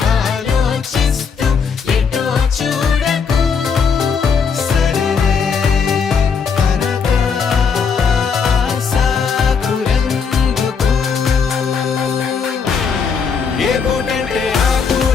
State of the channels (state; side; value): quieter; right; 6.0 dB